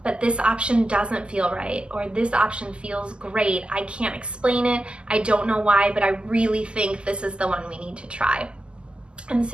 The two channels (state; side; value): late; left; 0.050 ms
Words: but this option doesn't feel right, or this option feels great. I can't explain it. I don't know why, but I really think this is the one we need to try. And